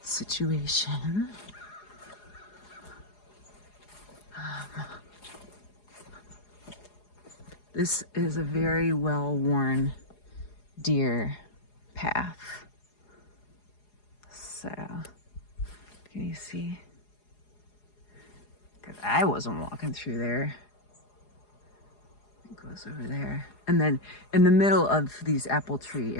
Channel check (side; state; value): right; late; 4.8 ms